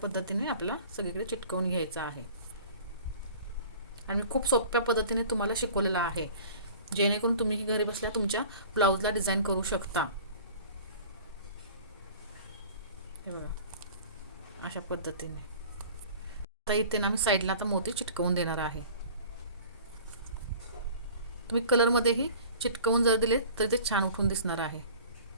आपल्याला सगळीकडे चिटकवून घ्यायचं आहे. आणि खूप सोप्या पद्धतीने तुम्हाला शिकवलेलं आहे, जेणेकरून तुम्ही घरी बसल्या तुमच्या ब्लाऊजला डिझाईन करू शकता. हे बघा अशा पद्धतीने. आता इथे ना मी साईडला आता मोती चिटकवून देणार आहे. तुम्ही कलरमध्येही चिटकवून जर दिले तर ते छान उठून दिसणार आहे,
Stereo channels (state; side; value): inverted; both; correlation -0.44